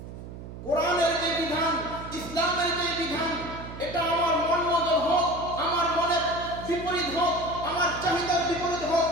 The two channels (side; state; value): right; noise; hum, 12 dB below the sound